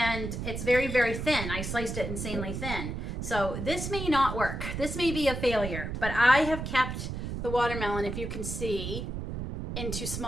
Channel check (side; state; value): right; noise; rumble, 5 dB below the sound